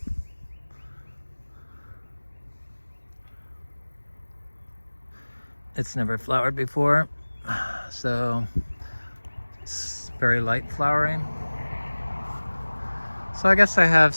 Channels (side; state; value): both; inverted; correlation -1.00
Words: It's never flowered before, so it's very light flowering. So I guess I have